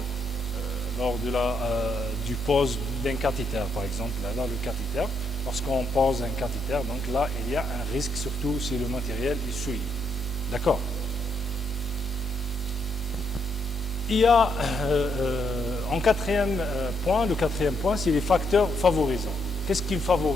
du pose d'un cathéter, par exemple. Là, le cathéter, lorsqu'on pose un cathéter, donc là il y a un risque, surtout si le matériel est souillé. D'accord? Il y a en quatrième point, le quatrième point, c'est les facteurs favorisants. Qu'est-ce qui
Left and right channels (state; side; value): normal; both; correlation 0.76